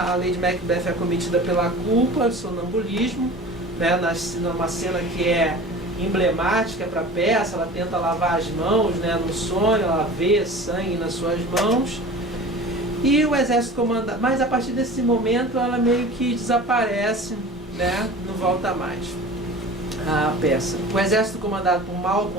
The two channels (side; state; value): both; normal; correlation 0.38